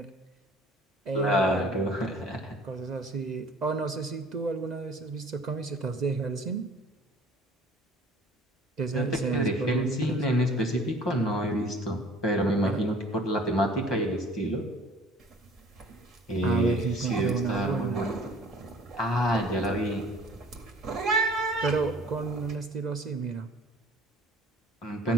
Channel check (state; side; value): normal; both; correlation 0.50